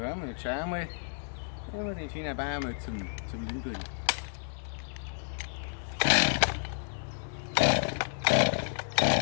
und jetzt schauen wir mal, wie wir den schönen Baum mal zum Liegen bringen.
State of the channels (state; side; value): silent; right; digital silence